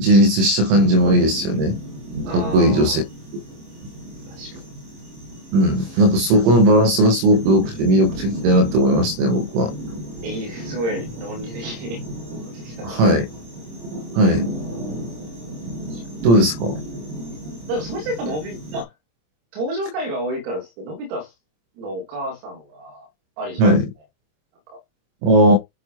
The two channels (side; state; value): left; late; 26 ms